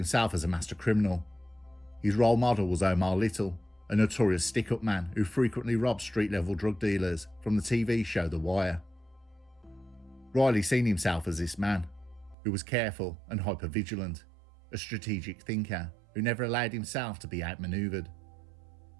as a master criminal. His role model was Omar Little, a notorious stick-up man who frequently robbed street-level drug dealers from the TV show The Wire. Riley seen himself as this man, who was careful and hyper-vigilant, a strategic thinker who never allowed himself to be outmanoeuvred.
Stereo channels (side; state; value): left; drops out; at 12.4 s